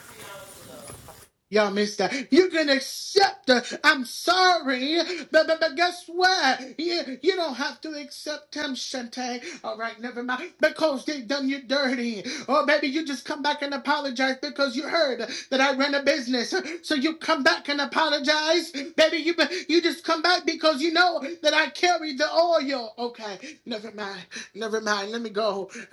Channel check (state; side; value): identical; both; correlation 1.00